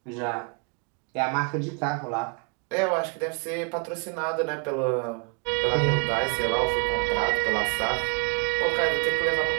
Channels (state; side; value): quieter; left; 35.0 dB